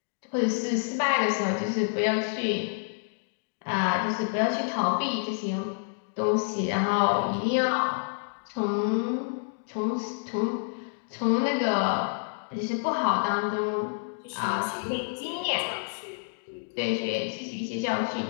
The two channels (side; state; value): right; silent; digital silence